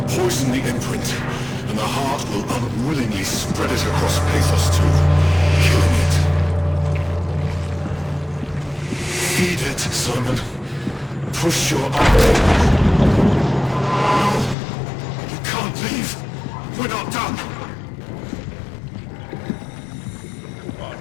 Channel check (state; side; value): drops out; right; at 14.6 s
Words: poison the imprint, and the heart will unwillingly spread it across Pathos 2, killing it. Feed it, Simon. Push your arm. No! You can't leave! We're not done!